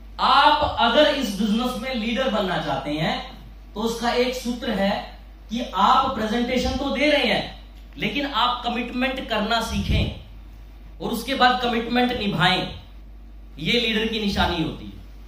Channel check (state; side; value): identical; both; correlation 1.00